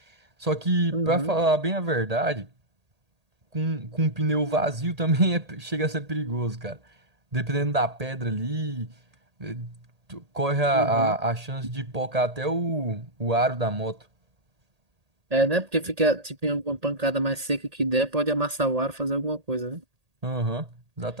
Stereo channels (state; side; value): late; left; 1.8 ms